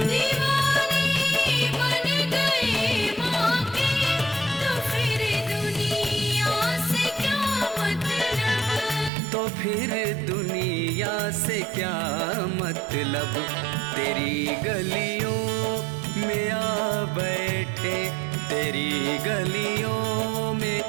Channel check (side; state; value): left; drops out; at 9.1 s